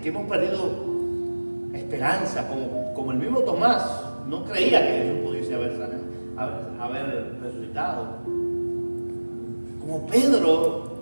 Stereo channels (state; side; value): inverted; both; correlation -1.00